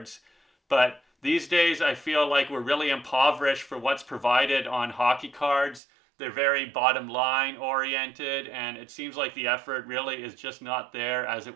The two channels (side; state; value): left; drops out; at 5.8 s